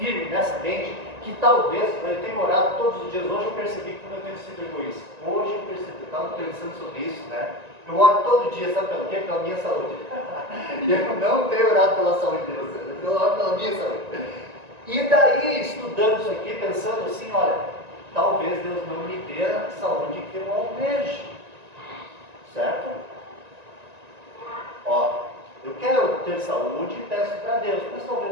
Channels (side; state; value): left; late; 1.9 ms